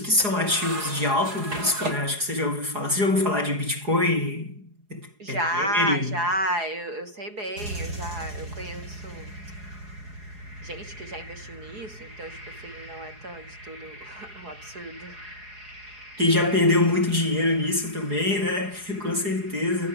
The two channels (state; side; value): late; left; 4.8 ms